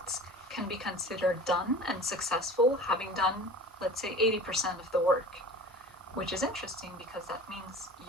can be considered done and successful, having done, let's say, 80% of the work, which is interesting because that means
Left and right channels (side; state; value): both; normal; correlation 0.39